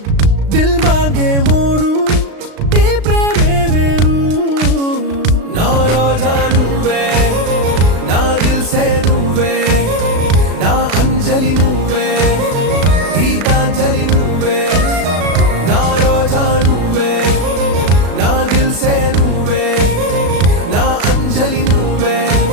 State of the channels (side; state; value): left; late; 36 ms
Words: दिल मांगे मोरू ఈ ప్రేమే వేరు నా రోజా నువ్వే నా దిల్ సే నువ్వే నా అంజలి నువ్వే గీతాంజలి నువ్వే నా రోజా నువ్వే నా దిల్ సే నువ్వే నా అంజలి నువ్వే